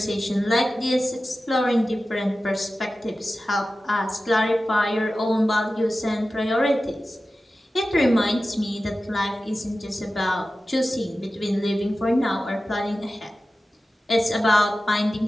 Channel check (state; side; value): normal; both; correlation 0.94